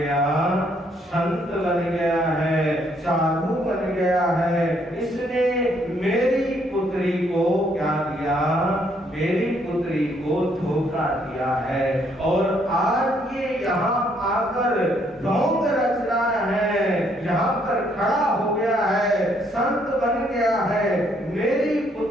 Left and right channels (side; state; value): both; normal; correlation 0.69